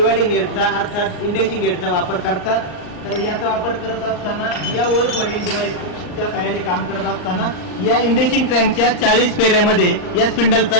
हेडचा अर्थात इंडेसिंग हेडचा वापर करतात. तर याचा वापर करत असताना या वर्क होल्डिंग डिव्हाइसच्या सहाय्याने काम करत असताना या इंडेसिंग क्रँकच्या 40 फेऱ्यामध्ये या स्पिंडलचा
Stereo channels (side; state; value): right; late; 39 ms